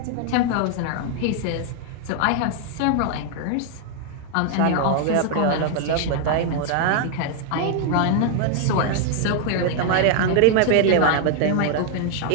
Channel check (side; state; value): both; different; correlation 0.00